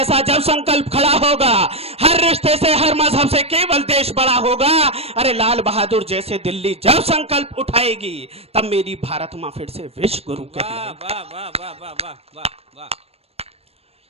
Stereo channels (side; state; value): left; late; 0.29 ms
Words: जब संकल्प खड़ा होगा, हर रिश्ते से हर मजहब से केवल देश बड़ा होगा। अरे लाल बहादुर जैसे दिल्ली जब संकल्प उठाएगी, तब मेरी भारत मां फिर से विश्व गुरु कहलाएगी। वाह, वाह, वाह, वाह, वाह, वाह,